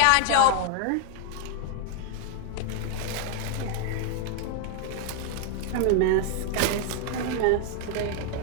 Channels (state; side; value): different; both; correlation 0.00